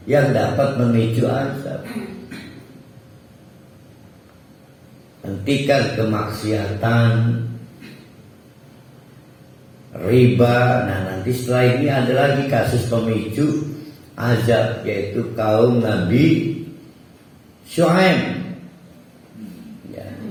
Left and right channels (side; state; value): both; identical; correlation 1.00